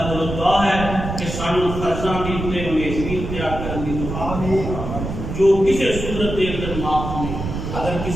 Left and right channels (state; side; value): noise; right; rumble, 6 dB below the sound